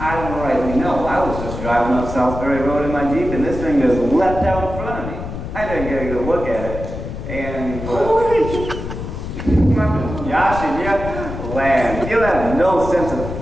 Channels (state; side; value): noise; left; rumble, 7 dB below the sound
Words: I don't rightly know. I was just driving up Southbury Road in my Jeep, and this thing just leapt out in front of me. I didn't get a good look at it, and Josh and you, land, you have no sense of